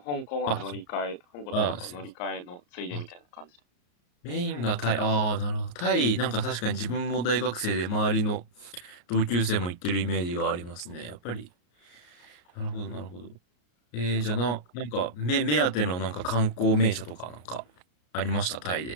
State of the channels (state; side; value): late; right; 34 ms